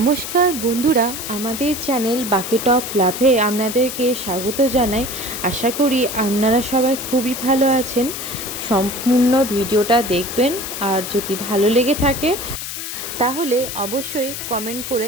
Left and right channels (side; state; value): left; noise; hiss, 7 dB below the sound